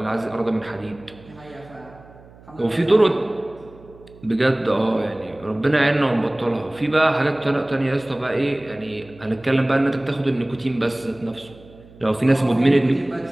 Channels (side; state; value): right; noise; hum, 23 dB below the sound